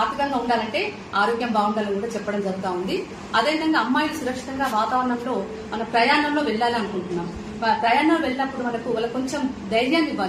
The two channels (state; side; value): identical; both; correlation 1.00